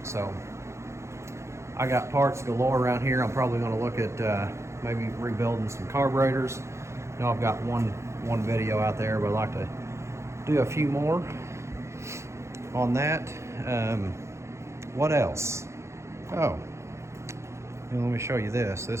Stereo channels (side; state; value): left; late; 0.14 ms